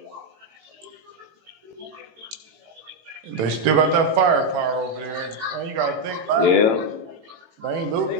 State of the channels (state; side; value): late; left; 18 ms